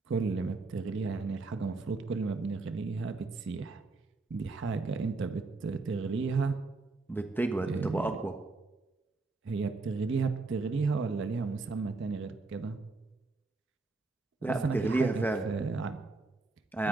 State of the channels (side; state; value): left; quieter; 3.6 dB